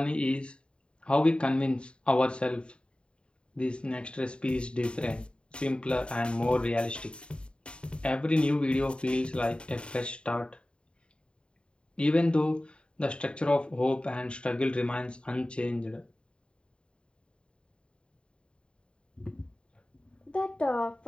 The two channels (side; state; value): right; late; 0.054 ms